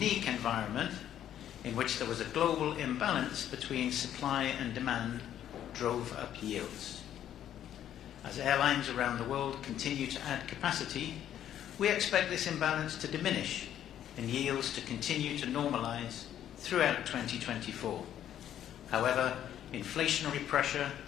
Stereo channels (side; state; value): right; quieter; 10.8 dB